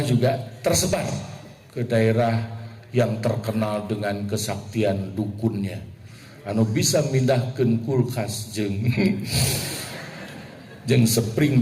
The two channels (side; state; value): both; identical; correlation 1.00